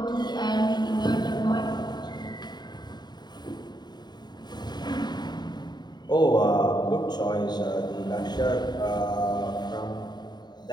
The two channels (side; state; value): right; late; 0.21 ms